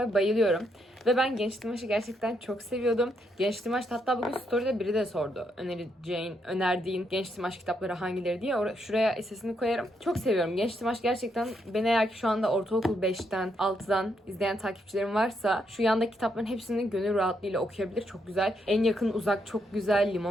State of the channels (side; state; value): both; normal; correlation 0.78